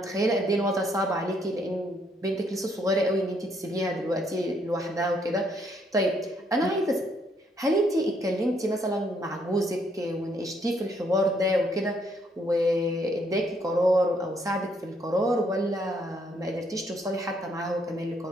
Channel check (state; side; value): normal; both; correlation 0.71